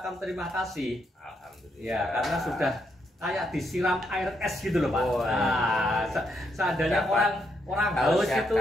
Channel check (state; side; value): normal; both; correlation 0.77